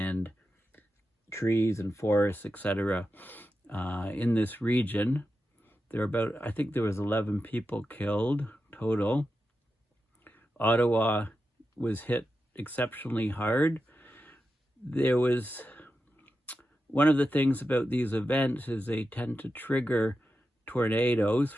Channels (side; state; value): both; normal; correlation 0.90